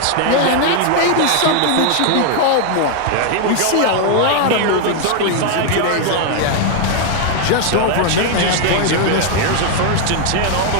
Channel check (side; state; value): both; different; correlation 0.00